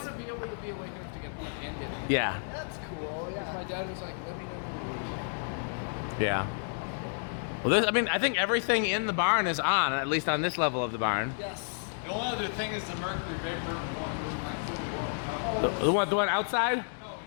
to be able to be awake enough to get plugged into it. yeah, That's cool, yeah. My dad was like, let me know when yeah. Well, this, I mean, I think everything in the barn is on, at least on this level of the barn. Yes. The only other thing is the mercury vapor one room like fully warm. The one outside?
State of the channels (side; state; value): right; silent; digital silence